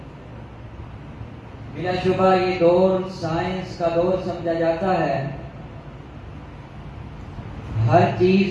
بلا شبہ یہ دور سائنس کا دور سمجھا جاتا ہے. ہر چیز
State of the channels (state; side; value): identical; both; correlation 1.00